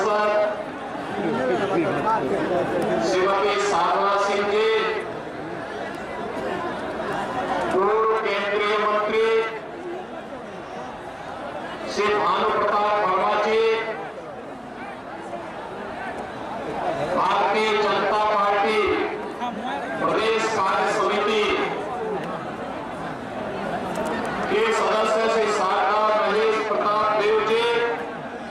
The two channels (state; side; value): identical; both; correlation 1.00